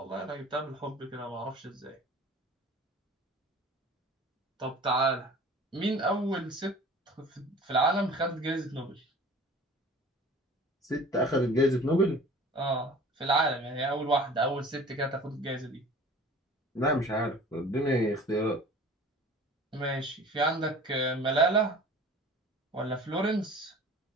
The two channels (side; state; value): both; normal; correlation 0.43